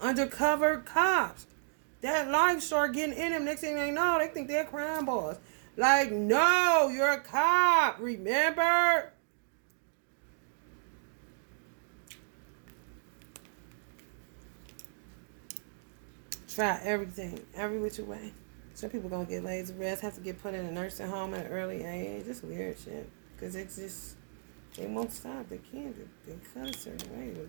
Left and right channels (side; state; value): left; silent; digital silence